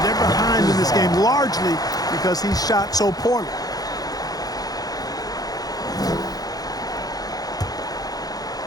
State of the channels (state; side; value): late; right; 0.18 ms